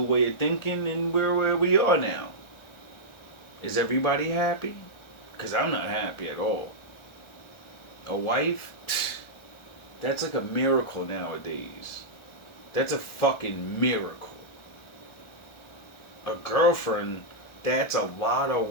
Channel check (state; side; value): late; right; 1.4 ms